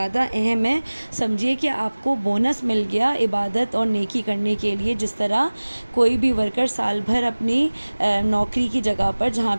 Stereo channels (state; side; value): inverted; both; correlation -1.00